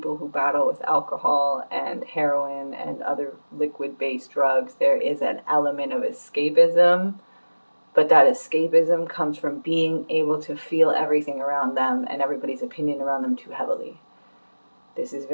who battle with alcohol and heroin and other liquid-based drugs, there is an element of escapism, but that escapism comes from being able to feel everything around them and everybody's opinion around them too heavily. This is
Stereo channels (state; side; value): inverted; both; correlation -1.00